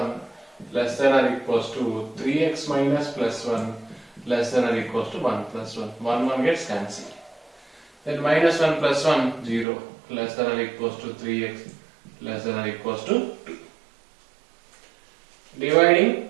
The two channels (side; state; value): left; drops out; at 9.7 s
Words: less than or equals to 3x minus plus 1 less than or equals to 1 plus 1. 1 gets cancelled. Then minus 1 plus 1, 0, less than or equals to 3x less than or equals to 2. Dividing